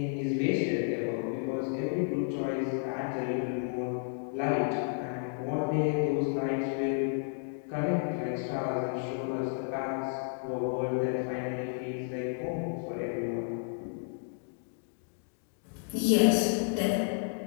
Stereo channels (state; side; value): silent; right; digital silence